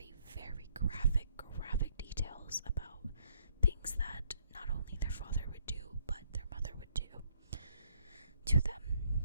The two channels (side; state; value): both; inverted; correlation -0.68